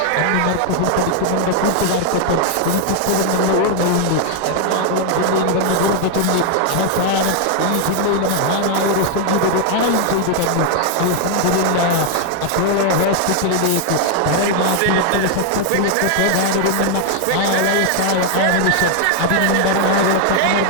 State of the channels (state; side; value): different; both; correlation 0.00